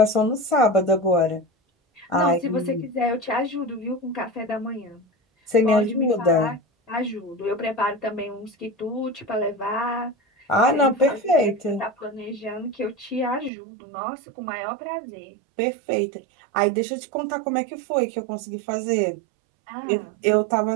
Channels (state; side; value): drops out; left; at 13.5 s